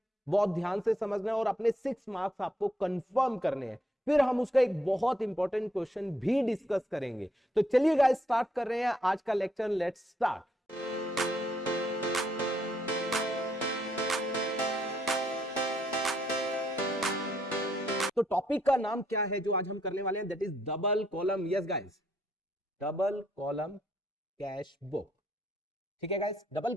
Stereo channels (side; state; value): both; normal; correlation 0.74